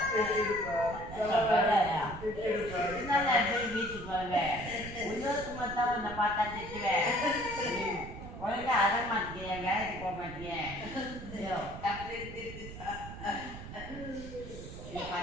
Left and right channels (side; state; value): right; noise; rumble, 11 dB below the sound